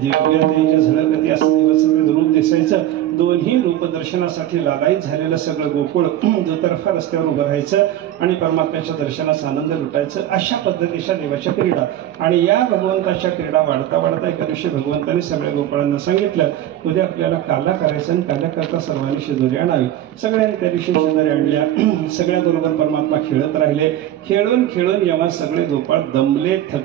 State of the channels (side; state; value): left; quieter; 12.4 dB